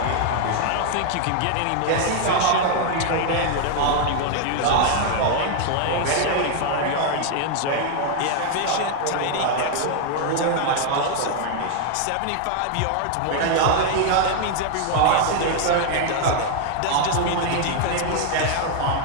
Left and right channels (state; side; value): different; both; correlation 0.00